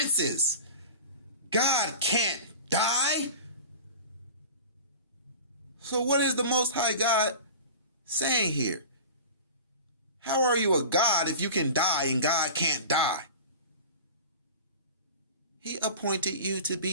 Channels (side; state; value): both; inverted; correlation -0.36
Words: God can't die. So what is the Most High God saying here? How are you a God if you can die and God can't die? He appointed you to